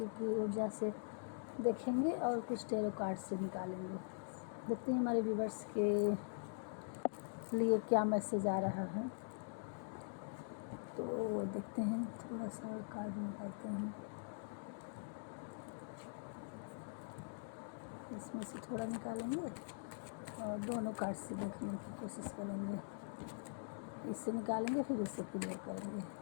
की ऊर्जा से देखेंगे और कुछ टेरो कार्ड से निकालेंगे। देखते हैं हमारे व्यूवर्स के लिए क्या मैसेज आ रहा है। तो देखते हैं, थोड़ा सा कार्ड निकालते हैं, इसमें से थोड़ा निकालेंगे और दोनों कार्ड से देखने की कोशिश करेंगे। इससे निकालेंगे फिर इससे क्लियर करेंगे।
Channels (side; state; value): right; silent; digital silence